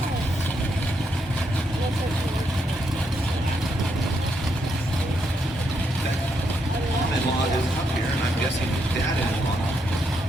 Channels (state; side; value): normal; both; correlation 0.78